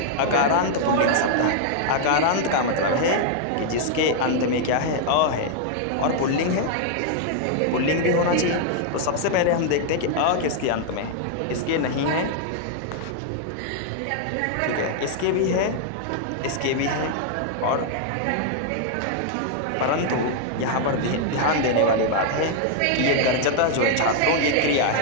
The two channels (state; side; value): different; both; correlation 0.00